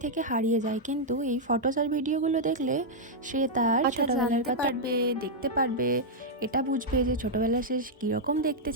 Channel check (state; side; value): normal; both; correlation -0.05